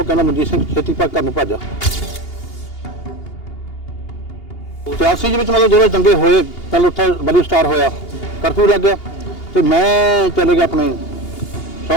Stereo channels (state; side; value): late; right; 2.8 ms